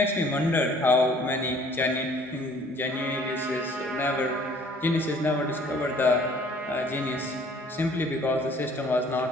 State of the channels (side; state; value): both; normal; correlation 0.55